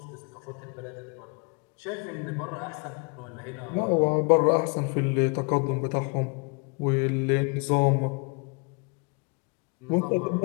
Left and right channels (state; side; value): quieter; right; 33.5 dB